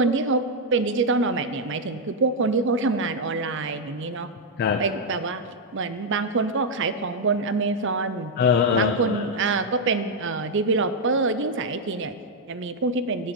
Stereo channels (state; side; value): normal; both; correlation -0.01